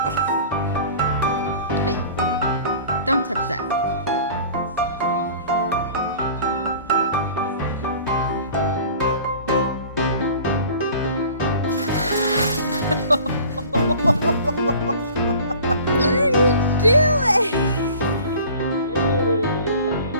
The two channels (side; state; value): both; inverted; correlation -0.44